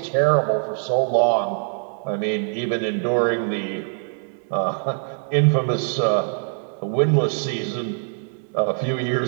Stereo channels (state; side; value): silent; left; digital silence